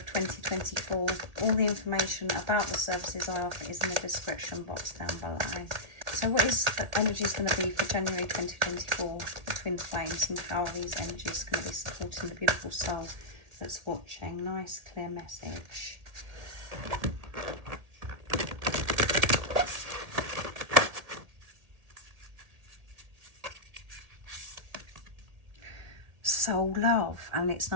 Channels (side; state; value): left; late; 1.8 ms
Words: 2024, all the information about the services I offer is in the description box down below. So what is the energies going to be for January 2024 for Twin Flames, and how are these energies going to be supporting the beautiful soul that's watching? Nice clear message. Soul Love, and it's